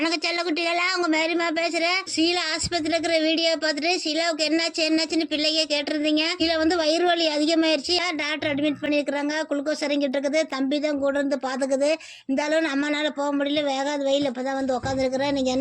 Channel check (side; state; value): both; identical; correlation 1.00